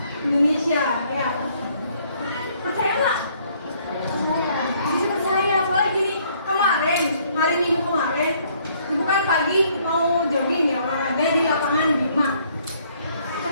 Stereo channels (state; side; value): inverted; both; correlation -0.65